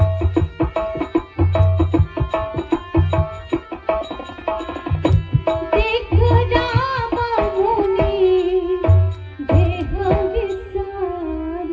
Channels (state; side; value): identical; both; correlation 1.00